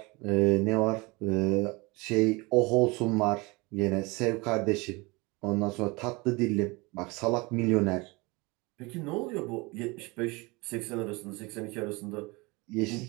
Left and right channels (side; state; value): left; quieter; 25.4 dB